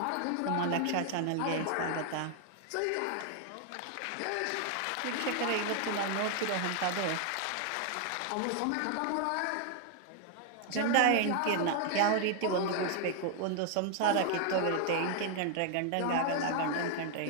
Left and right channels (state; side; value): different; both; correlation 0.00